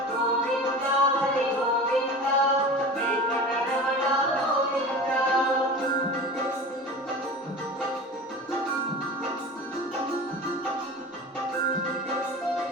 గోవింద హరి గోవింద వెంకటరమణ గోవింద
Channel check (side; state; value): both; normal; correlation 0.34